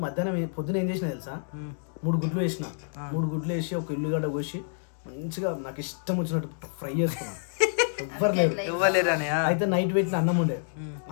మధ్యాహ్నం పొద్దున ఏం చేసిన తెలుసా, 3 గుడ్లు వేసిన, 3 గుడ్లు వేసి ఒక ఉల్లిగడ్డ కోసి మంచిగా నాకు ఇష్టం వచ్చినట్టు ఫ్రై చేసుకున్నా. ఇవ్వలేరు అని. అయితే నైట్ పెట్టిన అన్నం ఉండే,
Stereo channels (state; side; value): silent; right; digital silence